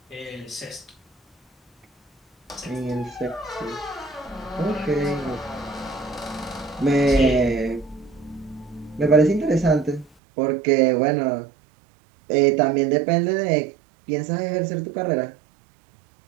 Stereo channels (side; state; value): left; drops out; at 10.1 s